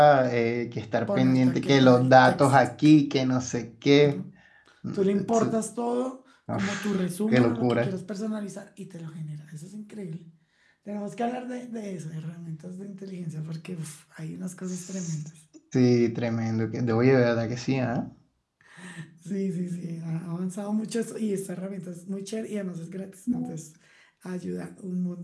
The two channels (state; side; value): identical; both; correlation 1.00